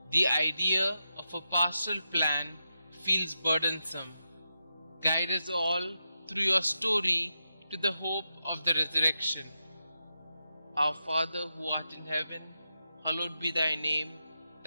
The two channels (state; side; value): inverted; both; correlation -0.87